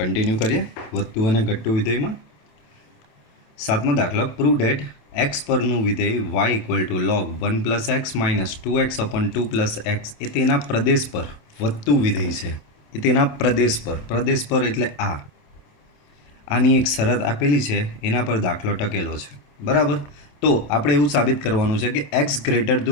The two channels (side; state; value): right; late; 27 ms